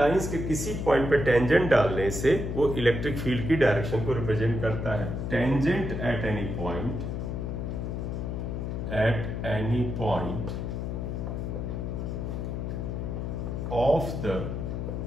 के किसी पॉइंट पे टेंजेंट डालने से वो इलेक्ट्रिक फील्ड की डायरेक्शन को रिप्रेजेंट करता है। Tangent at any point of the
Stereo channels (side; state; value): left; noise; hum, 3 dB below the sound